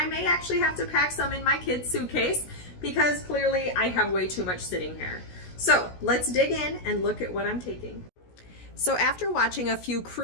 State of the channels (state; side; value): late; right; 16 ms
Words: may actually have to pack some in my kid's suitcase because clearly I have way too much sitting here. So let's dig in and look at what I'm taking. So after watching a few